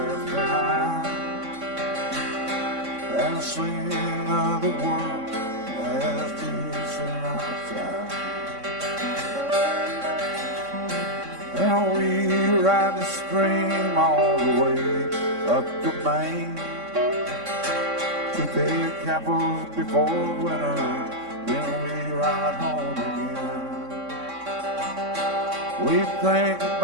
behind, and sing of the world as deep in our time. And we ride the stream all the way up to Maine, to big apples before winter, then we ride home again. We think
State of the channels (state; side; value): late; left; 3.6 ms